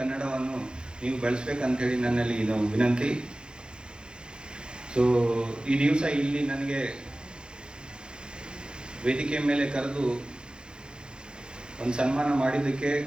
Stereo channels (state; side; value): late; left; 0.049 ms